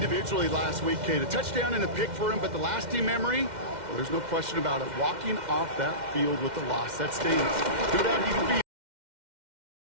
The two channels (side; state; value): left; late; 2.1 ms